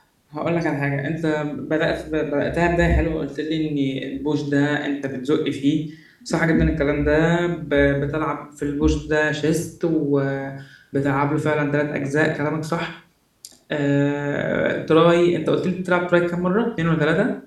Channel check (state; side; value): identical; both; correlation 1.00